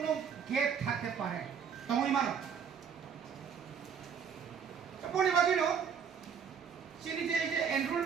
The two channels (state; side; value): quieter; left; 7.1 dB